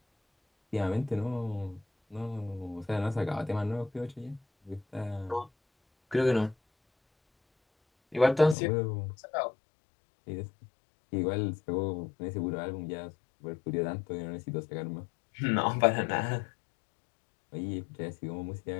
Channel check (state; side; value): drops out; right; at 8.6 s